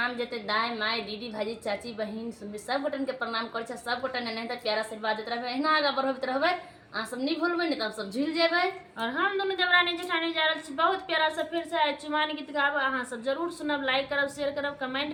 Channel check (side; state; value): both; identical; correlation 1.00